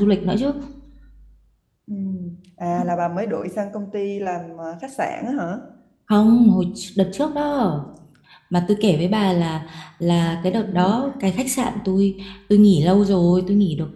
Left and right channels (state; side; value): identical; both; correlation 1.00